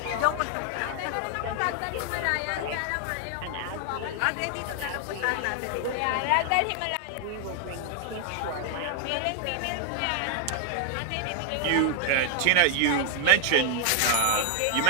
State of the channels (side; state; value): both; different; correlation 0.00